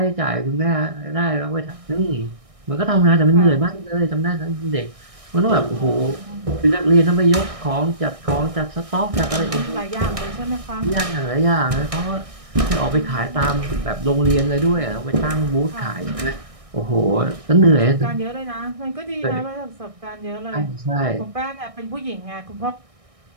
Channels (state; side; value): late; left; 1.6 ms